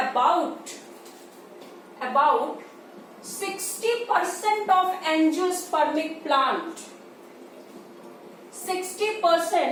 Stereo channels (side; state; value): both; identical; correlation 1.00